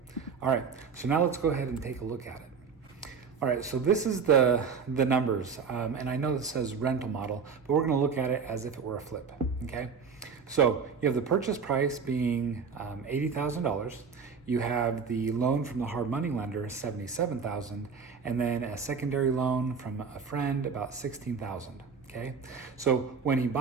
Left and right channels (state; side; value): quieter; left; 5.8 dB